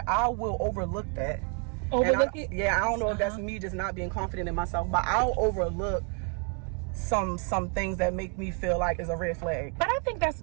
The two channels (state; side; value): quieter; left; 38.4 dB